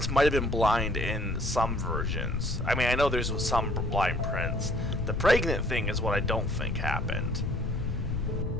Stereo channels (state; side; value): noise; left; rumble, 1 dB below the sound